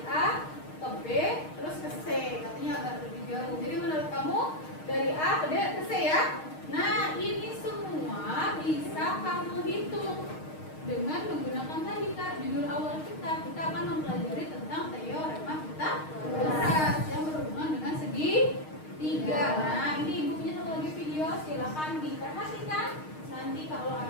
A ke B terus ke C. Katanya agak lebih jauh. Jadi menurut kamu dari A ke D ke C ya? Nah, ini semua bisa kamu hitung dengan menggunakan tadi Kak, judul awal kita akan mempelajari tentang teorema Pythagoras yang berhubungan dengan segitiga. Nah, ini ibu punya satu lagi video, silakan diperhatikan. Nanti kalau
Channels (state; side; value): late; right; 6.5 ms